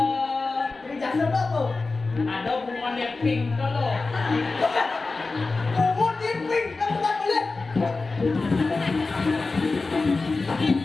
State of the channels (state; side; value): quieter; right; 3.8 dB